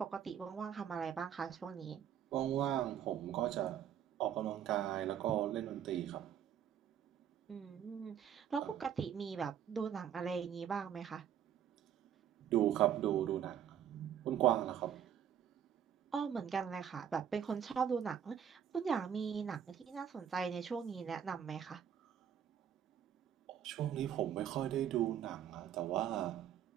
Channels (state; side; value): quieter; left; 9.2 dB